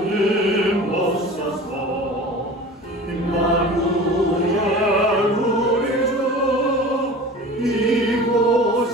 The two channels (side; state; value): both; normal; correlation 0.38